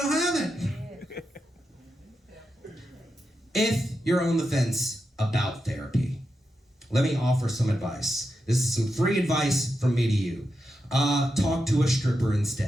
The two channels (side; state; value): both; normal; correlation 0.87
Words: I'll have it. If you're on the fence about therapy, let me offer some advice. This is some free advice from me to you. Talk to a stripper